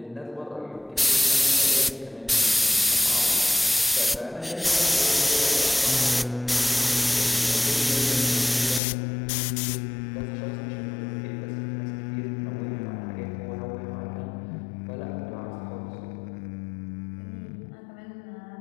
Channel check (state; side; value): drops out; right; at 8.8 s